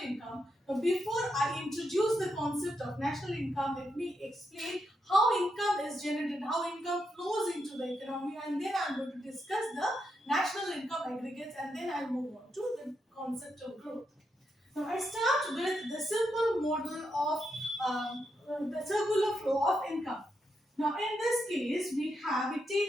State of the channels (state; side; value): normal; both; correlation 0.83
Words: income. But before I introduce the concept of national income, let me explain how income is generated, how income flows into the economy, and then I'm going to discuss the national income aggregates, and then I'll move on to the concept of growth. Now I start with the simple model of the circular flow of income. Now in this case,